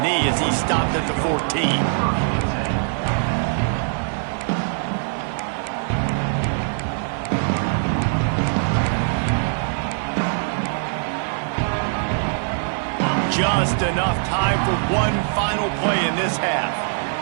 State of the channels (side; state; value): left; silent; 64 dB below the other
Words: knee as he stopped at the 14. Just enough time for one final play in this half.